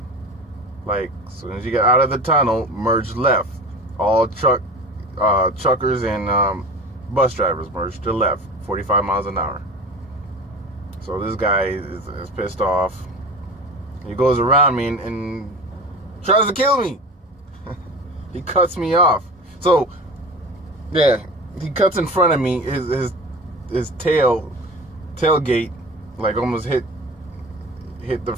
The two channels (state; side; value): normal; both; correlation 0.34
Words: Like, as soon as you get out of the tunnel, merge left. All truckers and bus drivers merge to left, 45 miles an hour. So this guy is pissed off. He goes around me and tries to kill me. He cuts me off. So, yeah, he cuts in front of me. His tailgate, like, almost hit the